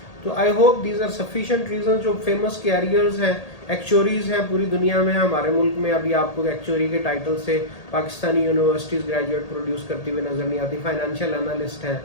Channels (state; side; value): late; right; 1.8 ms